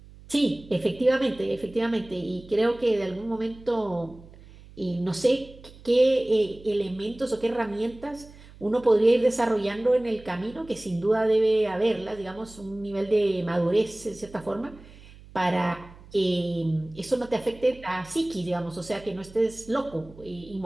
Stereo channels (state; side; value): noise; right; hum, 21 dB below the sound